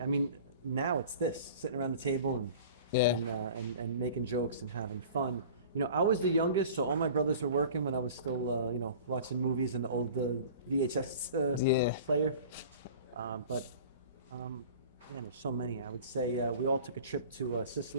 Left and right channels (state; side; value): inverted; both; correlation -0.42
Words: I mean, now it's this, sitting around the table and making jokes and having fun. I was the youngest, so all my brothers were working when I was still, watching movies in the old VHS player. Man, there's so many. I would say we all took a trip to